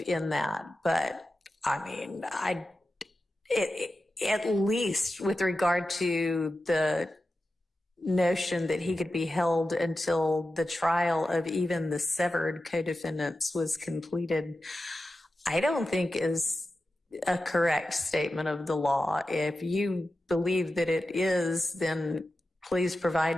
in that. But I mean, at least with regard to the notion that he could be held until the trial of even the severed co-defendants was completed, I don't think is a correct statement of the law. If you believe that it is, then please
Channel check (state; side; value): normal; both; correlation 0.92